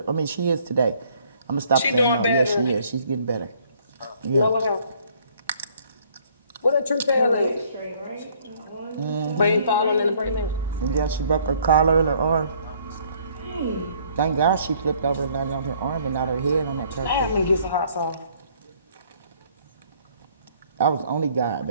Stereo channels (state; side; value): inverted; both; correlation -0.61